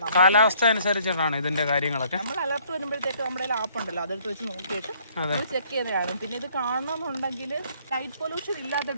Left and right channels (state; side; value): inverted; both; correlation -0.62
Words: കാലാവസ്ഥ അനുസരിച്ചിട്ടാണ് ഇതിന്റെ കാര്യങ്ങളൊക്കെ. നമ്മൾ അലർട്ട് വരുമ്പോഴത്തേക്ക് നമ്മുടെ ആപ്പ് ഉണ്ടല്ലോ, അതെടുത്ത് വെച്ച് നോക്കിയിട്ട് ചെക്ക് ചെയ്യുന്നതാണ്. പിന്നെ ഇത് കാണണമെന്നുണ്ടെങ്കിൽ ലൈറ്റ് പൊല്യൂഷൻ